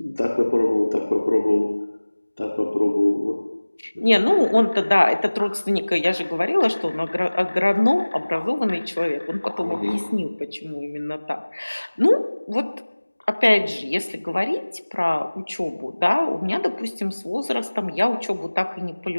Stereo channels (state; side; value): inverted; both; correlation -1.00